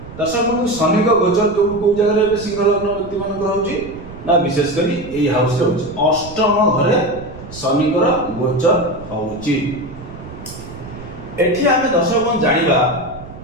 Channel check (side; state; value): right; noise; rumble, 15 dB below the sound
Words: दर्शक बंधु, शनि का गोचर को जगह रे सिंह लग्न व्यक्ति मान रहउछि ना, विशेष करी एई हाउस रे होछि अष्टम घरे शनिकर गोचर होछि। एठी आमे दर्शक बंधु जानिबा